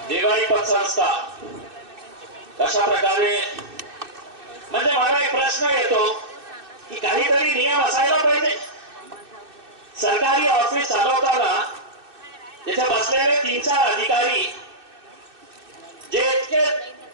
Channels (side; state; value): left; late; 2.6 ms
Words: देवाई पतसंस्था कशा प्रकारे, म्हणजे मला एक प्रश्न येतो की काहीतरी नियम असायला पाहिजे. सरकारी ऑफिस चालवताना तिथे बसलेले 3-4 अधिकारी जे इतके